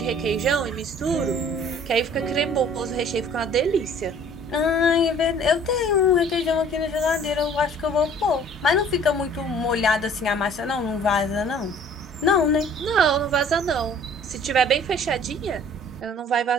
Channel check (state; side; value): normal; both; correlation 0.52